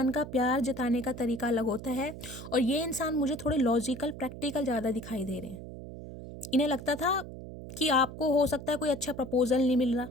का प्यार जताने का तरीका अलग होता है, और ये इंसान मुझे थोड़े लॉजिकल प्रैक्टिकल ज़्यादा दिखाई दे रहे हैं। इन्हें लगता था कि आपको हो सकता है कोई अच्छा प्रपोजल नहीं मिल रहा,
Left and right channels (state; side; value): noise; right; hum, 12 dB below the sound